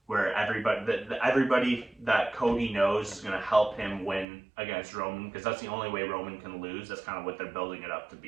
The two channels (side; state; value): left; drops out; at 4.2 s